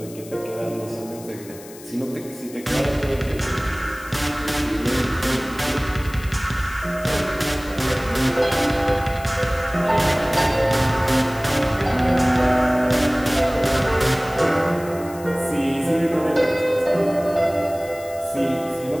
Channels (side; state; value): left; noise; hiss, 19 dB below the sound